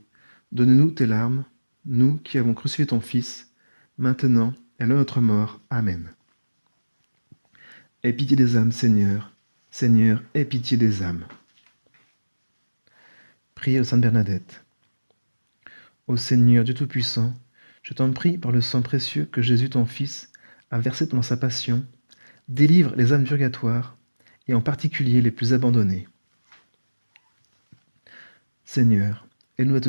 donne-nous tes larmes, nous qui avons crucifié ton Fils, maintenant et à notre mort. Amen. Aie pitié des âmes, Seigneur. Seigneur, aie pitié des âmes. Prière de Sainte Bernadette. Ô Seigneur Dieu Tout-Puissant, je t'en prie par le sang précieux que Jésus ton Fils a versé pendant sa passion, délivre les âmes purgatoires, et en particulier les plus abandonnées. Seigneur, aide-nous à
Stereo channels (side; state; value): both; inverted; correlation -1.00